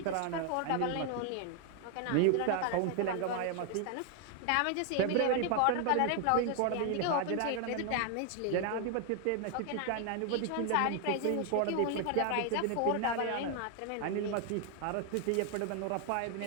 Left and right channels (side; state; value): both; different; correlation 0.00